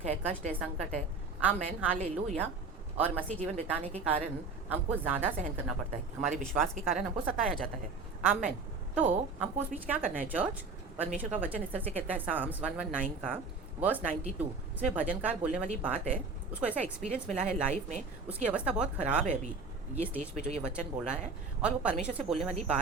है, कष्ट है, संकट है। Amen hallelujah. और मसीह जीवन बिताने के कारण हमको ज़्यादा सहन करना पड़ता है, हमारे विश्वास के कारण हमको सताया जाता है। आमेन। तो हमको उस बीच क्या करना है चर्च? परमेश्वर का वचन इस तरह से कहता है, साम्स 119 का वर्स 92। इसमें भजनकार बोलने वाली बात है, उसको ऐसा एक्सपीरियंस मिला है लाइफ में, उसकी अवस्था बहुत ख़राब है अभी ये स्टेज पे जो ये वचन बोल रहा है, और वो परमेश्वर से बोलने वाली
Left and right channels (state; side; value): quieter; left; 4.2 dB